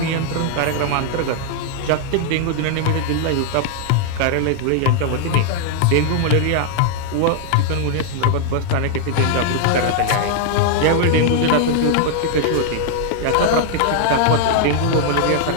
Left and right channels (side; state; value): both; different; correlation 0.00